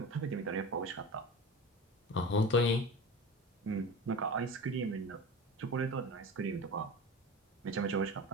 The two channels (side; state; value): both; normal; correlation 0.31